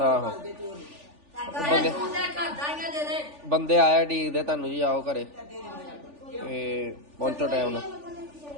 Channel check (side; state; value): left; late; 3.4 ms